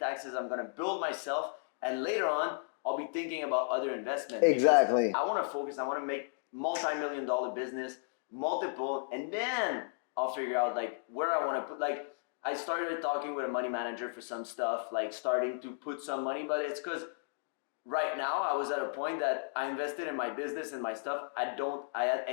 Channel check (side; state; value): right; silent; digital silence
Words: I'm going to build myself. And later on, I'll be thinking about other investments. Because I want to focus. I want to make multi-million-dollar business, multiple, and then I'll figure out like where I want to put. Like I started talking with a money manager for some stuff, like starting to put some money, but it's because right now I was at a point that I invested in my business and my stuff. I had